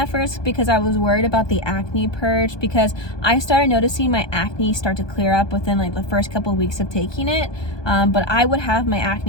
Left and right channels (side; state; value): right; late; 1.2 ms